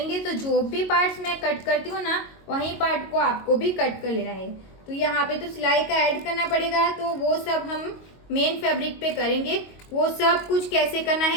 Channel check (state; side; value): late; right; 22 ms